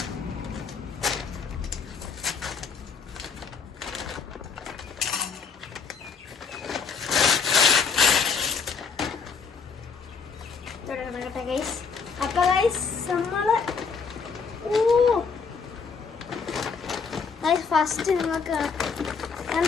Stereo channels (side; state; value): right; quieter; 5.5 dB